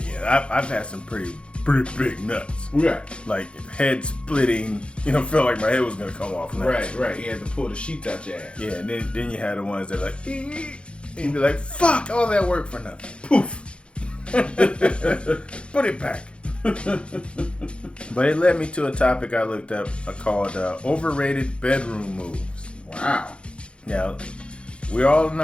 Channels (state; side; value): late; right; 0.057 ms